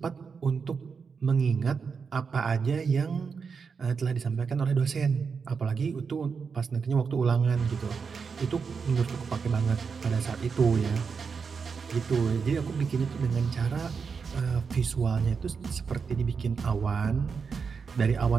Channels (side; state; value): left; quieter; 5.6 dB